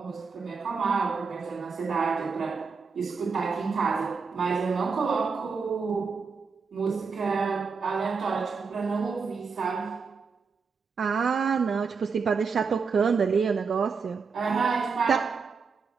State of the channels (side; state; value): left; quieter; 5.2 dB